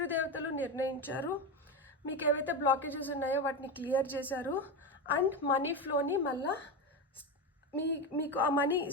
నిర్ణయించారు, మీకు ఏవైతే బ్లాకేజెస్ ఉన్నాయో వాటిని క్లియర్ చేశారు. అండ్ మనీ ఫ్లోని మళ్ళా మీకు ఆ మనీ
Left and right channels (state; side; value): normal; both; correlation 0.16